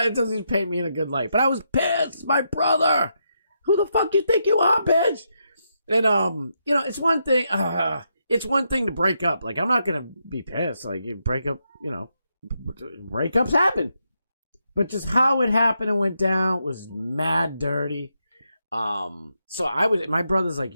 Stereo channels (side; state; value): both; inverted; correlation -0.81